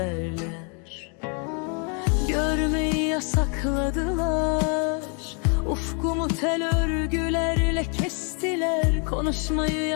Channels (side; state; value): right; quieter; 37.1 dB